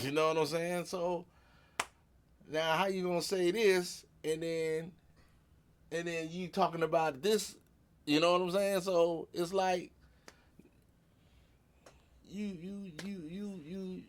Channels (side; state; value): both; identical; correlation 1.00